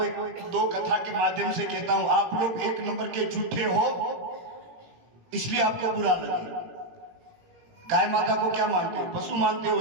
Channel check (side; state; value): left; late; 17 ms